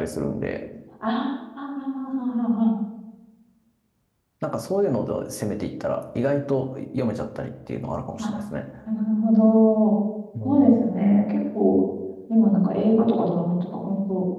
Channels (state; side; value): identical; both; correlation 1.00